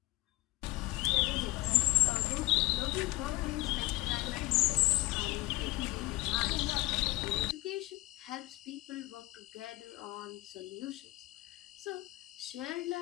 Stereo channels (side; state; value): right; quieter; 21.3 dB